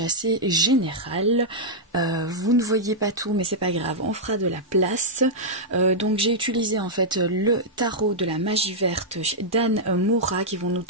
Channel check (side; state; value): both; normal; correlation -0.07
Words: assez général. Vous ne voyez pas tout mais c'est pas grave, on fera de la place. Donc j'ai utilisé en fait le tarot de la magie verte d'Anne Moura qui vont nous